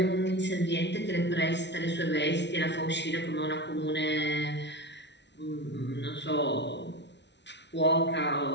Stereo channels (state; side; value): late; right; 0.51 ms